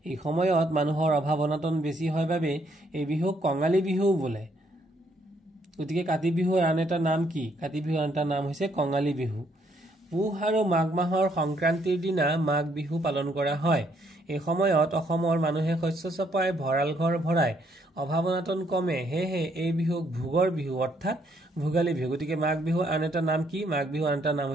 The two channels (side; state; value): both; normal; correlation 0.70